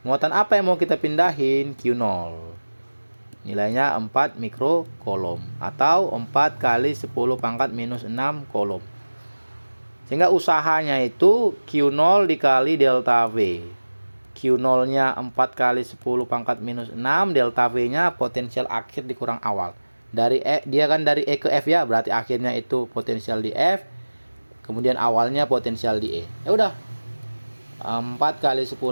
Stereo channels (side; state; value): both; inverted; correlation -1.00